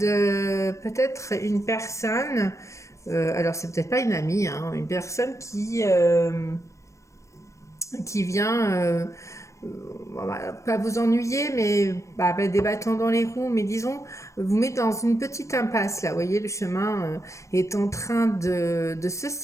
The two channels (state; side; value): late; right; 0.15 ms